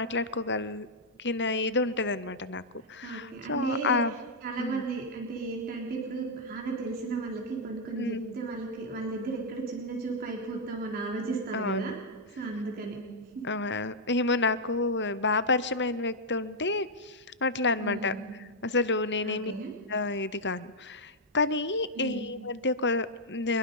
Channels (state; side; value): normal; both; correlation -0.06